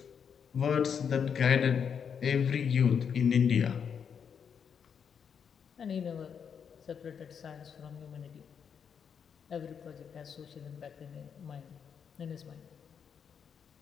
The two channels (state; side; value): quieter; right; 7.2 dB